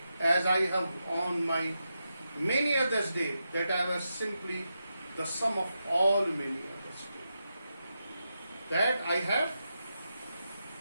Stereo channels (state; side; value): inverted; both; correlation -0.87